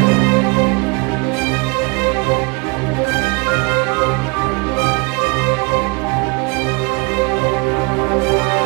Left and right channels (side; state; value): left; quieter; 29.9 dB